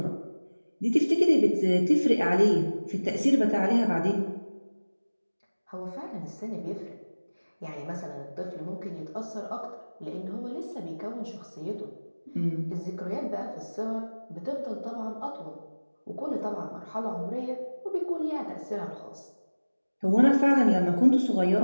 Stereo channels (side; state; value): both; inverted; correlation -1.00